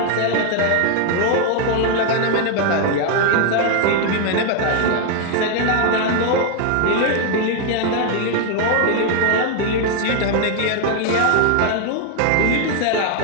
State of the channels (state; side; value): different; both; correlation 0.00